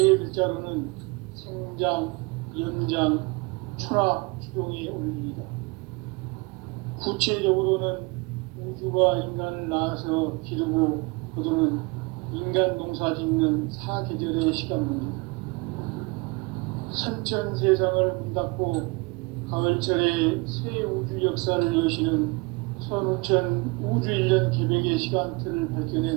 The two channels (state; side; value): quieter; left; 27.9 dB